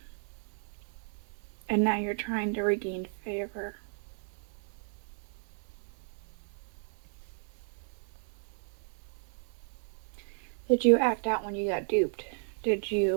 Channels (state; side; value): silent; left; digital silence